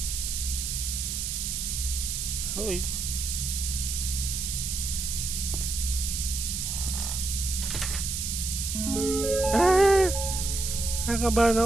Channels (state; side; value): noise; right; hiss, 2 dB below the sound